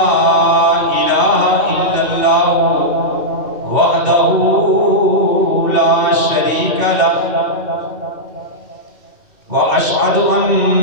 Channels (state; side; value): late; left; 2.7 ms